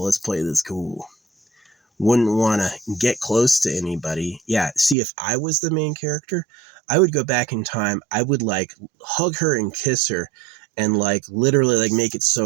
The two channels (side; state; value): left; drops out; at 5.0 s